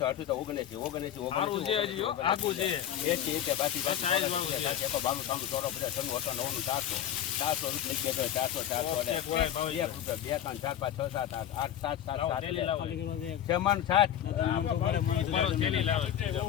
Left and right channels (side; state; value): right; quieter; 10.7 dB